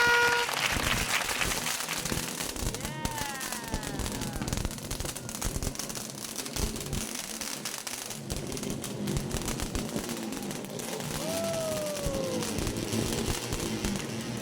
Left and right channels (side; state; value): both; identical; correlation 1.00